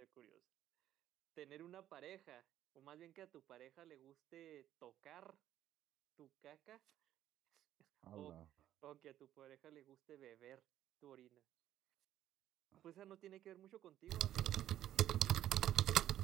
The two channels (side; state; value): left; quieter; 12.1 dB